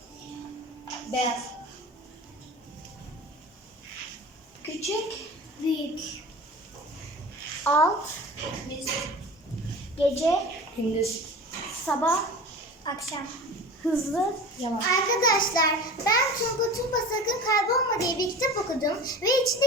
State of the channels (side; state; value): both; normal; correlation 0.36